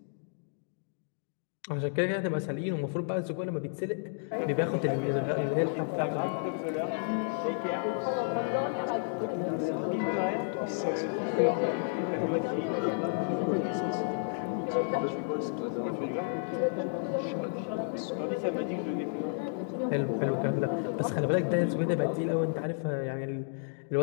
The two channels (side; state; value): right; silent; digital silence